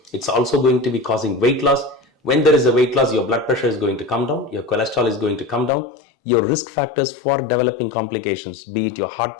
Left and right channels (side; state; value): right; drops out; at 5.7 s